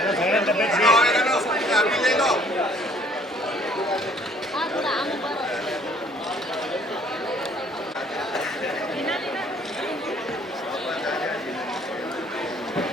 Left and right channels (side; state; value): both; normal; correlation 0.59